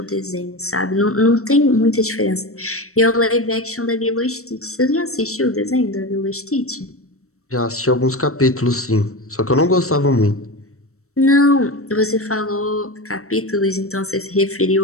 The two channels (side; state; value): right; late; 0.64 ms